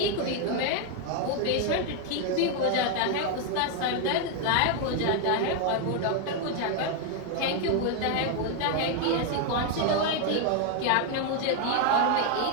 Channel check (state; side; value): different; both; correlation 0.01